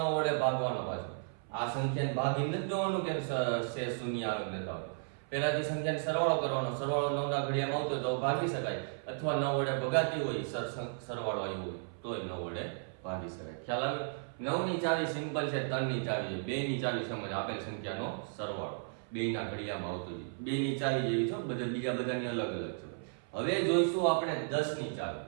વડે ભાગવાનો. પાછો આ સંખ્યાને ભાગીને જ જોવાનું કે શેષ શૂન્ય આવે કે નતા આવે. પહેલાથી સંખ્યાનો સરવાળો કરવાનો. સરવાળો 9 ના ઘડિયામાં આવતો તો ભાગી શકાય અથવા 9 વડે ભગાતી હોય સરવાળો આવ્યો હોય તોય 9 વડે ભાગી શકાય. ખ્યાલ આવે? 9 ની ચાવી સિમ્પલ છે, 3 ની ચાવી છે. 2 ની ચાવી સમજ આપેલ સંખ્યાનો સરવાળો 2 ના ઘડિયામાં આવતો છે. 2 ની ચાવી જેવી છે, બીજા બધાની અલગ અલગ છે. હવે જોઈશું આપણે 10 ની ચાવી.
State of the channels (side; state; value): left; silent; 55 dB below the other